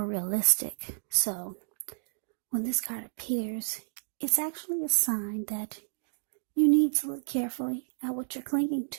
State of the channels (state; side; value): silent; left; digital silence